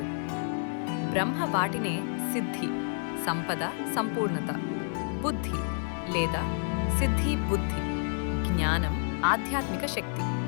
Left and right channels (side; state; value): right; silent; digital silence